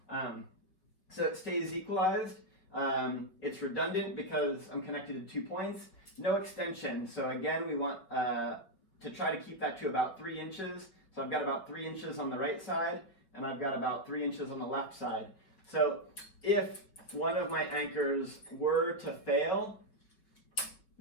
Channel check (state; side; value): late; right; 5.5 ms